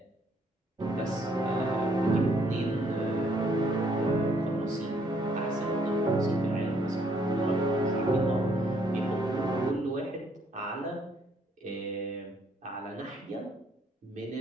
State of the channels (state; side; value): normal; both; correlation 0.68